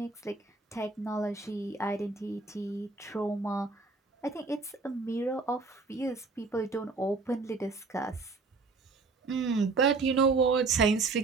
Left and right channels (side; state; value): left; quieter; 4.0 dB